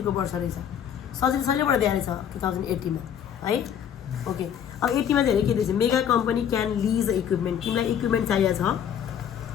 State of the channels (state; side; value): quieter; right; 9.0 dB